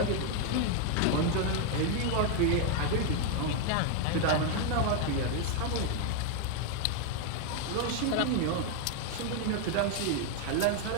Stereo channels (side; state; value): both; different; correlation 0.00